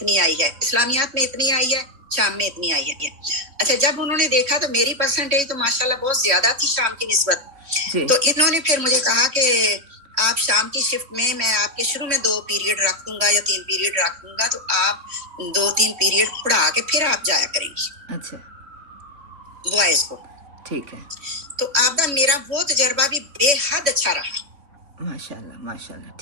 آئی ہے, اسلامیات میں اتنی آئی ہے, شام میں اتنی آئی ہے. اچھا, جب انہوں نے دیکھا تو میری پرسنٹیج تو ماشاءاللہ بہت زیادہ تھی شام کی نسبت. تو انہوں نے پھر مجھے کہا کہ آپ شام کی شفٹ میں آپ کے شروع میں 2 پیریڈ رکھ دوں گا یا 3 پیریڈ رکھ دوں گا, تو آپ 2-3 پیریڈ پڑھا کے پھر آپ جایا کریں گی. اچھا, بوائز کو. ٹھیک ہے. تو آپ میرا وہ تجربہ بھی بے حد اچھا رہا. ماشاءاللہ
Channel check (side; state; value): left; late; 3.5 ms